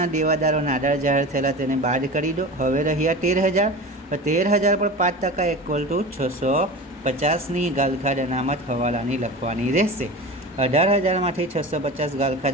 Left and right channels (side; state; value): both; normal; correlation 0.31